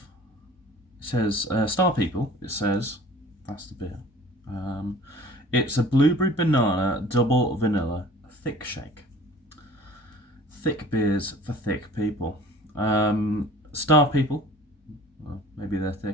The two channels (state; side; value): normal; both; correlation 0.47